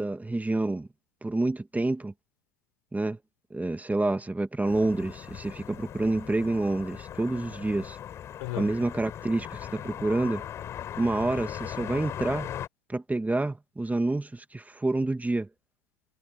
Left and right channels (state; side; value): normal; both; correlation 0.94